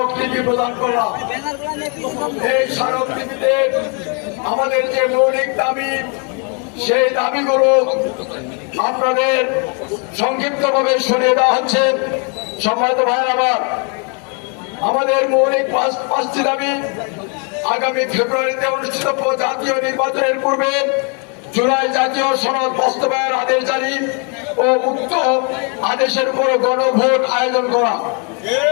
প্রদান করলাম। এই স্মারকলিপিতে আমাদের যে মৌলিক দাবি, সেই দাবিগুলো আপনাদের সংক্ষিপ্তভাবে শুনিয়ে দেওয়া হচ্ছে। সম্মানিত ভাইয়ের আমার, আমাদের মৌলিক 5টি দাবি আগামী ফেব্রুয়ারিতে অনুষ্ঠিত জাতীয় নির্বাচনের পূর্বে জুলাই জাতীয় সনদ বাস্তবায়ন আদেশ জারি ও উক্ত আদেশের উপর গণভোট আয়োজন করা,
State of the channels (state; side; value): quieter; right; 37.2 dB